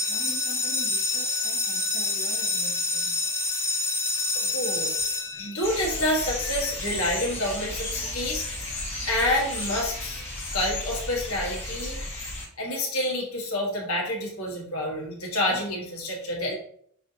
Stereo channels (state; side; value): normal; both; correlation 0.07